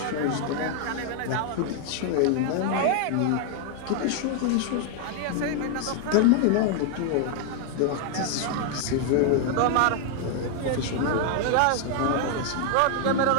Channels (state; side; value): different; both; correlation 0.00